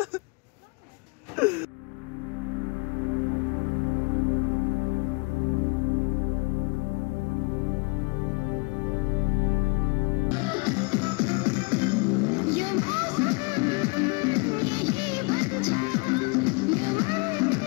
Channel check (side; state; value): right; quieter; 30.5 dB